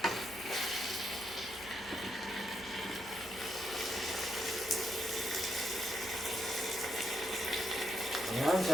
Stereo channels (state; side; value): noise; right; hum, 20 dB below the sound